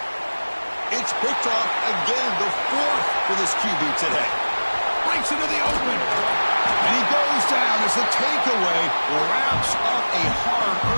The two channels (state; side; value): inverted; both; correlation -1.00